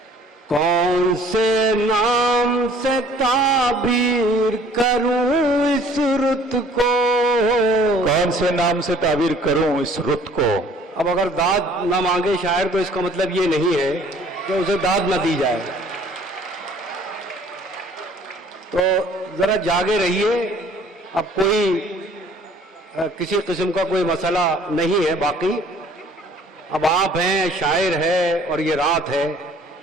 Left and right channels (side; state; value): both; normal; correlation 0.55